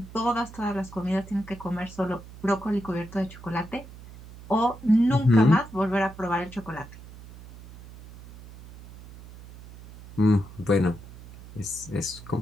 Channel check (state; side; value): noise; right; hum, 17 dB below the sound